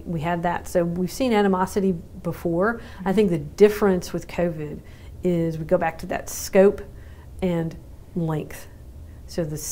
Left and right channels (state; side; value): identical; both; correlation 1.00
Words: had that. So we've seen animosity before. I think the difference with COVID is we go back to that scope and length. So the